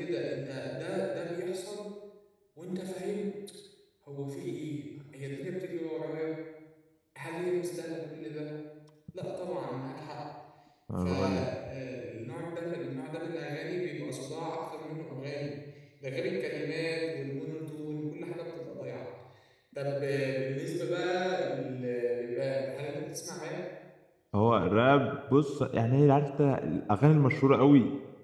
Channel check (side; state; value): both; identical; correlation 1.00